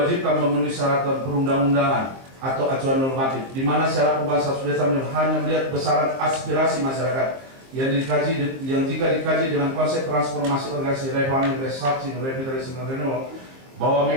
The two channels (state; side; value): late; left; 23 ms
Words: memenuhi syarat perundang-undangan atau acuan normatif, di mana syarat perubahan status desa hanya melihat besaran aspirasi masyarakat yang jika dikaji dengan konsep transformasi organisasi refarming, restructuring, revitalisasi, dan renewal, bahwa